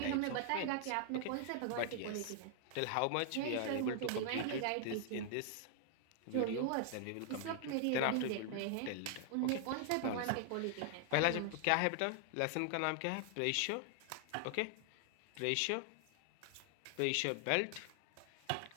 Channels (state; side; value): different; both; correlation 0.00